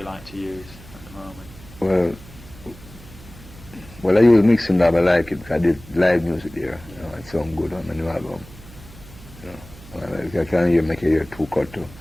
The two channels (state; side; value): noise; right; hum, 19 dB below the sound